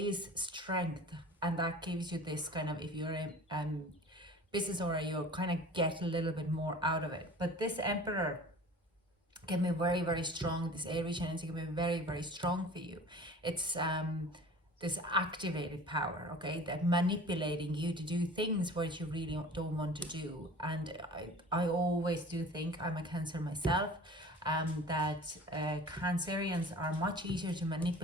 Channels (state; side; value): normal; both; correlation 0.42